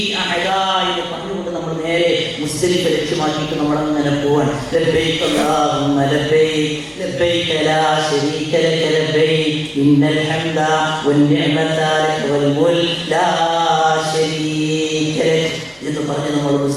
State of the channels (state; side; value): identical; both; correlation 1.00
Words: പറഞ്ഞുകൊണ്ട് നമ്മൾ നേരെ മുസ്ദലിഫ ലക്ഷ്യമാക്കിയിട്ട് നമ്മൾ അങ്ങനെ പോവാൻ. ലബ്ബൈക അല്ലാഹുമ്മ ലബ്ബൈക ലബ്ബൈക ലാ ശരീക ലക ലബ്ബൈക ഇന്നൽ ഹംദ വൻ നിഅമത ലക വൽ മുൽക് ലാ ശരീക ലക എന്ന് പറഞ്ഞ് നമ്മൾ